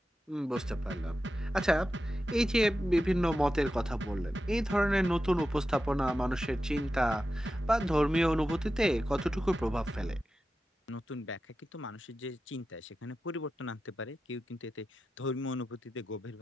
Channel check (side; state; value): both; normal; correlation 0.91